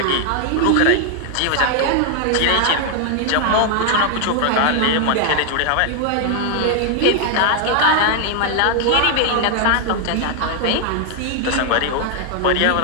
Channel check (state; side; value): different; both; correlation 0.00